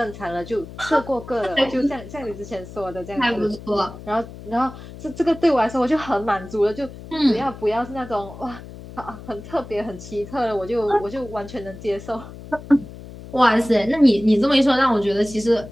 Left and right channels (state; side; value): noise; left; hum, 15 dB below the sound